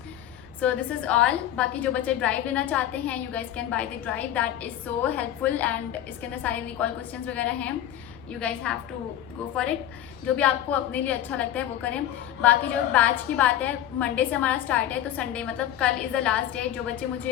So this is all. बाकी जो बच्चे ड्राइव लेना चाहते हैं, you guys can buy the drive, that is so helpful and इसके अंदर सारे रिकॉल क्वेश्चंस वगैरह हैं. You guys have to go for it. जो भी आपको अपने लिए अच्छा लगता है वो करें. बाकी जो बैच की बात है, मंडे से हमारा स्टार्ट है, तो संडे मतलब कल इज़ द लास्ट डे. जो बच्चे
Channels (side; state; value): right; quieter; 11.6 dB